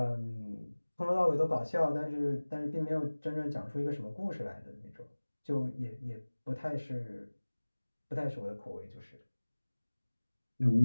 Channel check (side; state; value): both; inverted; correlation -1.00